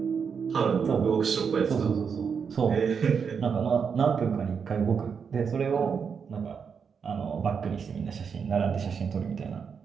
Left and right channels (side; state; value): left; quieter; 6.4 dB